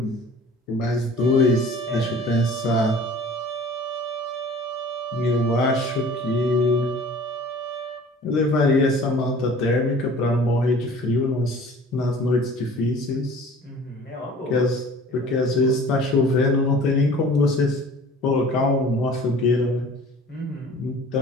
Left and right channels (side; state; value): both; normal; correlation 0.46